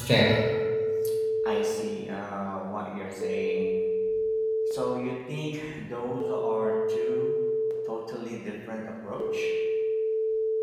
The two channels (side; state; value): both; identical; correlation 1.00